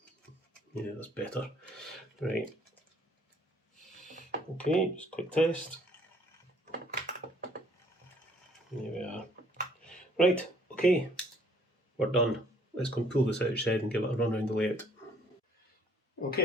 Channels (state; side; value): normal; both; correlation 0.61